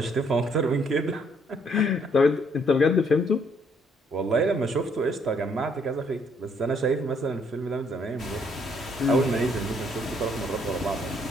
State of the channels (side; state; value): both; normal; correlation 0.68